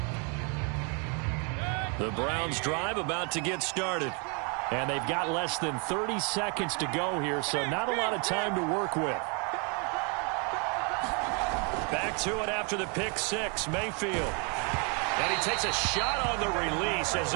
The Browns drive about to get started. And they've got less than 30 seconds to go here, so not a lot of time to work with. Back to it after the pick six, Mayfield. And he takes a shot on the release as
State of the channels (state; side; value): quieter; left; 35.3 dB